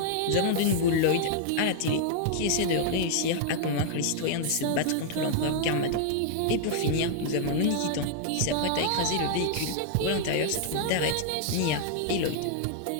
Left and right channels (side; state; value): both; different; correlation -0.01